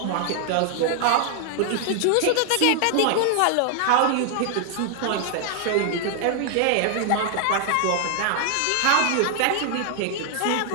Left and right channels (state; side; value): different; both; correlation 0.00